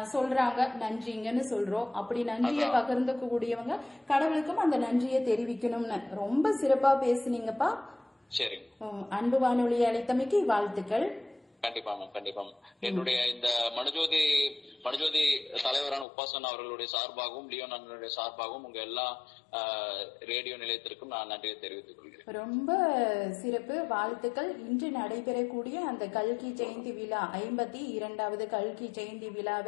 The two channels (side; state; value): right; drops out; at 16.1 s